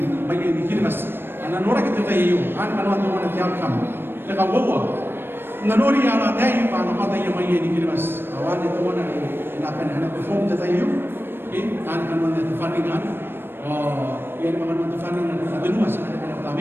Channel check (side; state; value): left; late; 0.10 ms